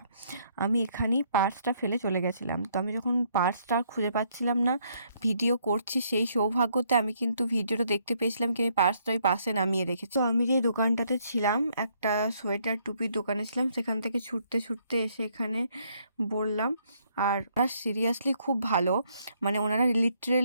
আমি এখানেই পার্সটা ফেলে চলে গেছিলাম। তো আমি যখন পার্সটা খুঁজে পাচ্ছিলাম না, ভিডিও করছি সেই সৌভাগ্যতে আমি কিন্তু ভিডিওটা দেখতে পেয়েছিলাম কি আমি পার্সটা ওই পাশে নামিয়ে রেখেছি। তো আমি যে দোকানটাতে ছিলাম, একটা সোয়েটার টুপির দোকানে ছিলাম, সেখান থেকে ছুটতে ছুটতে এসে এখানে বললাম। আর ওরা সিরিয়াসলি খুব ভালো, মানে ওনারা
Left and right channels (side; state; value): both; inverted; correlation -0.70